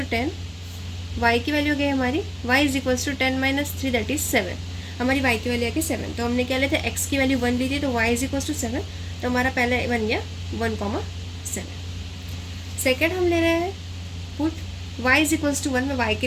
10, y की वैल्यू गई हमारी y is equals to 10 - 3 that is 7, हमारी y की वैल्यू आ गई 7। तो हमने क्या लेते हैं, x की वैल्यू 1 ली थी, तो y इज इक्वल्स टू 7, तो हमारा पहले बन गया 1,7। सेकेंड हम ले रहे हैं put y is equals to 1, मैं y के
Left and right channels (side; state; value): both; identical; correlation 1.00